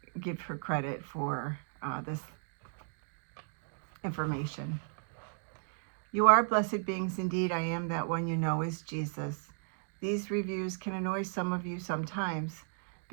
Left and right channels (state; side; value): silent; left; digital silence